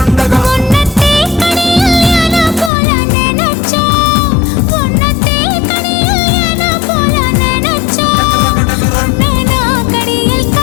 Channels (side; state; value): right; drops out; at 2.7 s